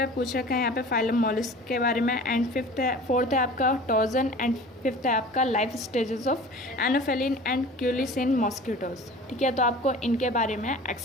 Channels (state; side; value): normal; both; correlation 0.41